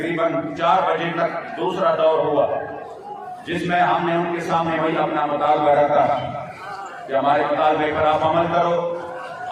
4 बजे तक दूसरा दौर हुआ, जिसमें हमने उनके सामने वही अपना मुतालबा रखा कि हमारे मुतालबे पर आप अमल करो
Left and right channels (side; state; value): both; identical; correlation 1.00